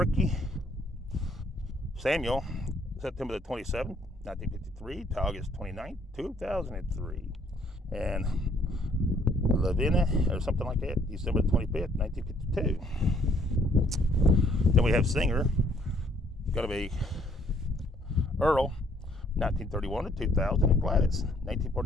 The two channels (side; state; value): both; normal; correlation 0.65